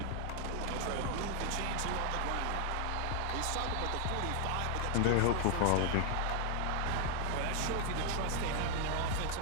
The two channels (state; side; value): different; both; correlation 0.00